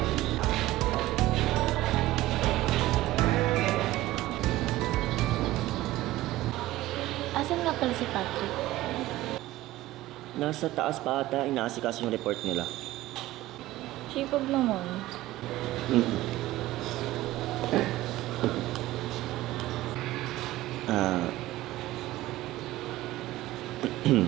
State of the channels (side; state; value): left; quieter; 16.5 dB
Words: Asan nga pala si Patrick? Nasa taas pa ata, inaasikas yung report nila. Sipag naman.